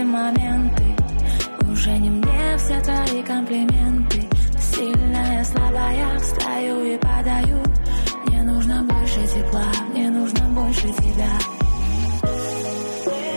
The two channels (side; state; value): both; inverted; correlation -1.00